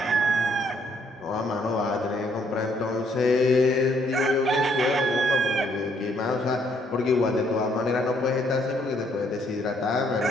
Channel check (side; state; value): both; normal; correlation 0.68